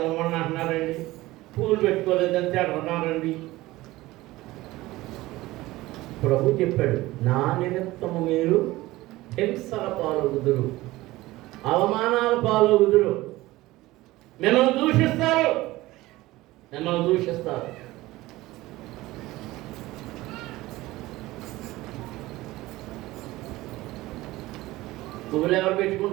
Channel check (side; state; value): left; quieter; 18.4 dB